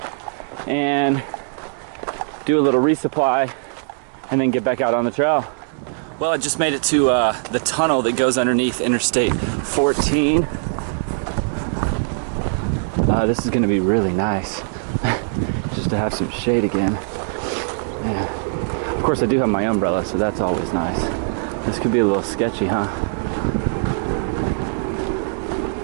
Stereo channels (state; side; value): silent; left; digital silence